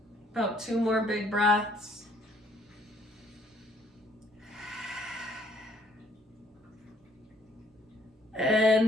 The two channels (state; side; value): normal; both; correlation 0.63